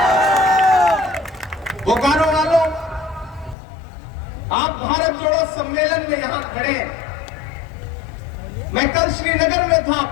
बोकारो वालों, आप भारत जोड़ो सम्मेलन में यहां खड़े हैं। मैं कल श्रीनगर में था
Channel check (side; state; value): right; drops out; at 3.6 s